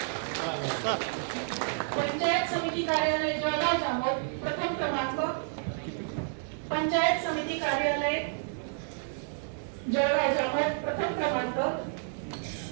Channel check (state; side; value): silent; left; digital silence